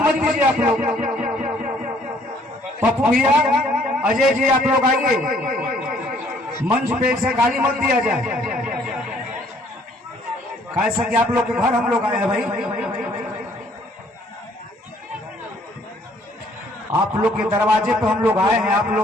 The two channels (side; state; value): both; normal; correlation 0.62